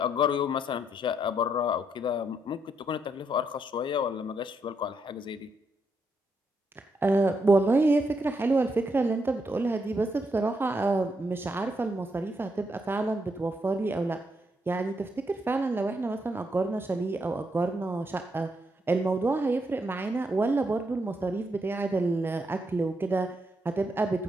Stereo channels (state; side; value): normal; both; correlation 0.78